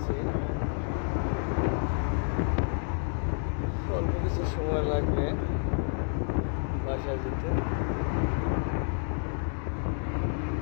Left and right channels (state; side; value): silent; right; 58 dB below the other